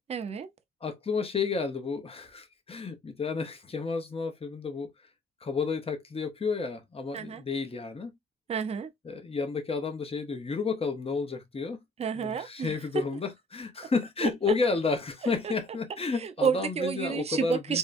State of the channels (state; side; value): normal; both; correlation 0.56